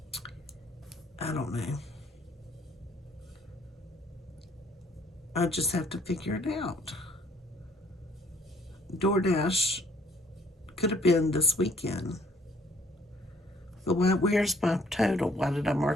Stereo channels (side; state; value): both; normal; correlation 0.62